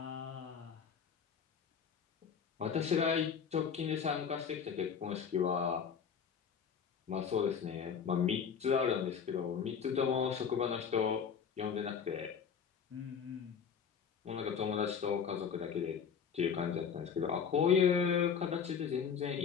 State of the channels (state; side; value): quieter; right; 7.0 dB